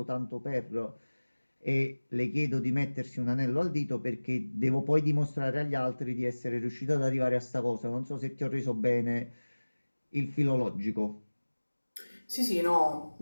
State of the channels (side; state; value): both; inverted; correlation -1.00